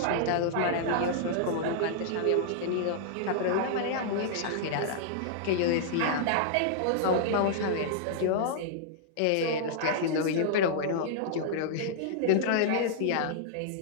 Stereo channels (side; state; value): both; different; correlation -0.01